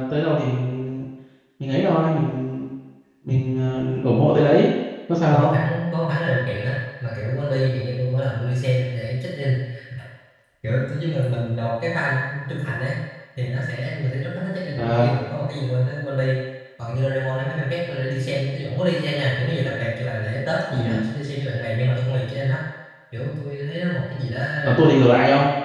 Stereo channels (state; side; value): identical; both; correlation 1.00